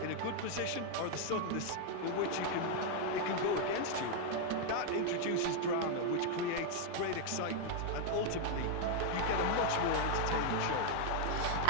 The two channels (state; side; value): different; both; correlation 0.00